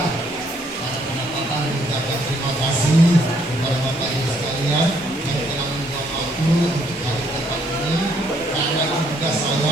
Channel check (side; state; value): both; normal; correlation 0.68